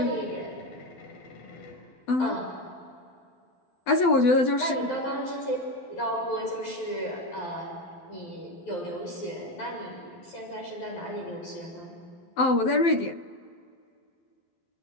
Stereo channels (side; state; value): right; late; 12 ms